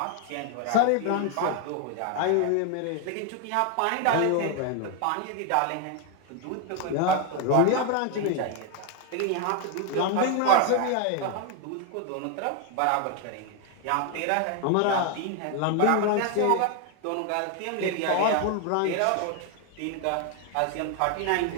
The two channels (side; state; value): both; different; correlation 0.01